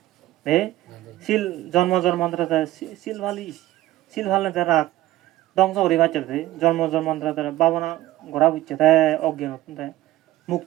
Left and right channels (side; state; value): left; quieter; 15.7 dB